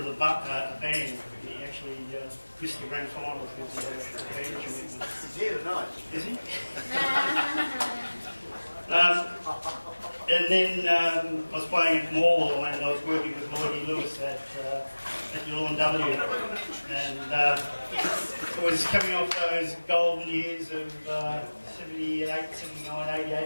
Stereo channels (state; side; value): inverted; both; correlation -1.00